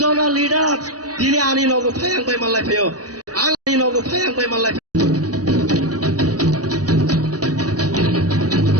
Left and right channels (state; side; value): late; left; 0.68 ms